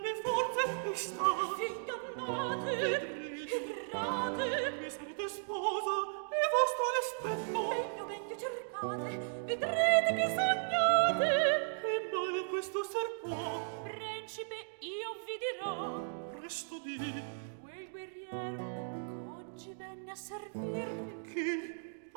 mie forze mi sta. Ingannate, errate, mi sarete sposa e vostro rispetto. Meglio, meglio cercate, vedrete che sognate. Che male questo ser può? Principe, io vi dirò. Presto di. Quel guerriero oggi venne a servirmi. Chi?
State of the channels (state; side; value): silent; left; digital silence